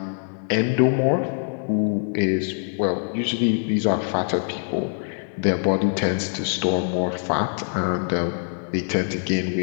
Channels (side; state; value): right; silent; 63 dB below the other